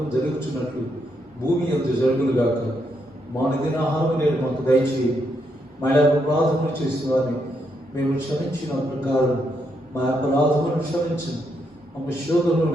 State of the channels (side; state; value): both; normal; correlation 0.78